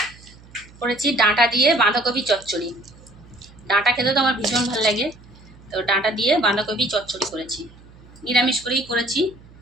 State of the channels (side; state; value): right; noise; hum, 23 dB below the sound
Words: করেছি ডাঁটা দিয়ে বাঁধাকপি চচ্চড়ি। ডাঁটা খেতে তো আমার ভীষণ ভালো লাগে, তো ডাঁটা দিয়ে বাঁধাকপি চচ্চড়ি করেছি। নিরামিষ করেই করেছি।